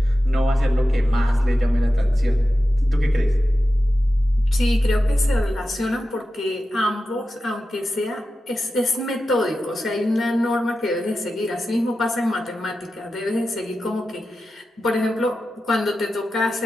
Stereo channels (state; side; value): normal; both; correlation 0.92